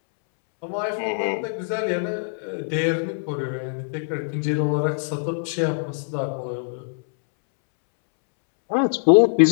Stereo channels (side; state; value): right; silent; 63 dB below the other